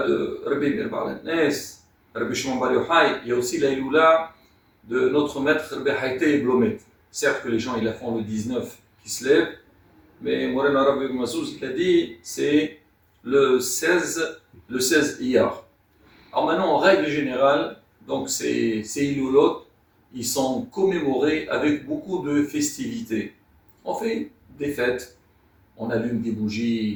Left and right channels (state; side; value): identical; both; correlation 1.00